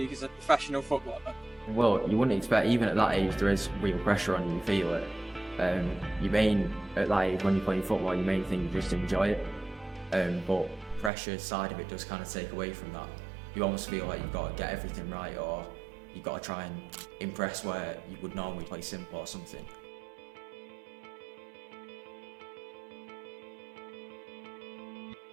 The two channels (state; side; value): drops out; left; at 11.1 s